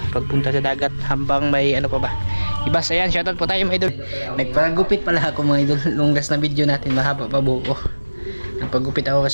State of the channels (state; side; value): inverted; both; correlation -1.00